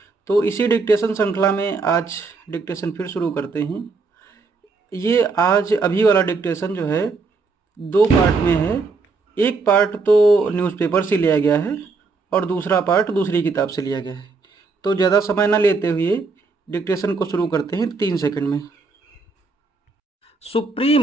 तो इसी डिक्टेशन श्रृंखला में आज डिक्टेशन फिर शुरू करते हैं। ये आज अभी वाला डिक्टेशन जो है 2 पार्ट में है। एक पार्ट तो न्यूज़पेपर से लिया गया है और दूसरा पार्ट दूसरी किताब से लिया गया है। तो ज़्यादा समय ना लेते हुए डिक्टेशन को शुरू करते हैं 3 सेकंड में।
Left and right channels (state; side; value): quieter; left; 4.2 dB